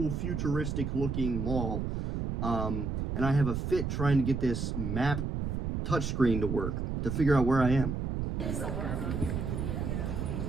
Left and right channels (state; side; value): noise; right; rumble, 2 dB below the sound